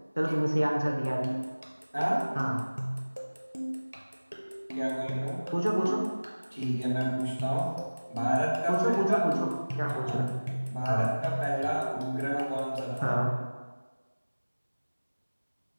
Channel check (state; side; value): inverted; both; correlation -1.00